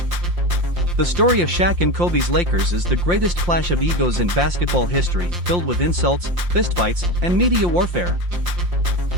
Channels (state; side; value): late; left; 5.7 ms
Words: The story of Shaq and Kobe's Lakers is the greatest clash of egos in basketball history, filled with insults, fistfights, and media warfare.